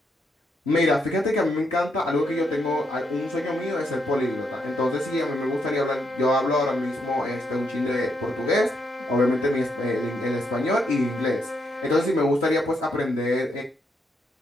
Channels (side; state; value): both; normal; correlation 0.78